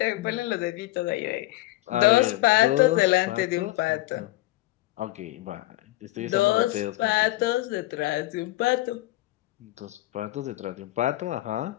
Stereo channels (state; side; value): quieter; right; 17.8 dB